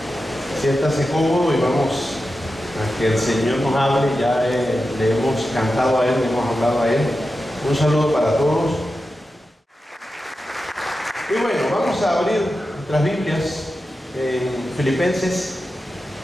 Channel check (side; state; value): both; normal; correlation 0.91